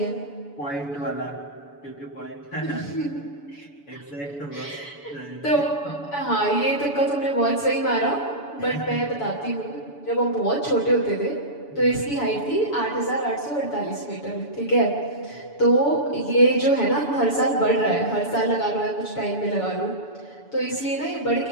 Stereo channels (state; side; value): late; right; 7.0 ms